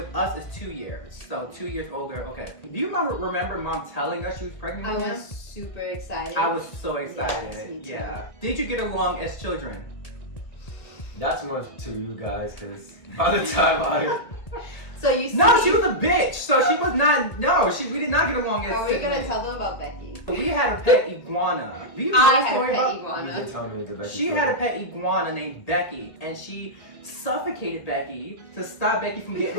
us is 2 years, so 2 years older. Okay. Do you remember Mom telling us she was pregnant I with him? was super excited. I was so excited. Yes, me too. Yeah. Did you get along as children? That's much to you guys, because by the time So you see, No, she was a bitch. So she was not. No, we did not get along as Are we gonna siblings. tell them about Becky? We had a pet iguana. Do you know I the had a story pet about? you iguana. did tell me the best. She had a pet iguana named Becky, and she suffocated Becky to stop Becky from getting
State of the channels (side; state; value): right; late; 1.5 ms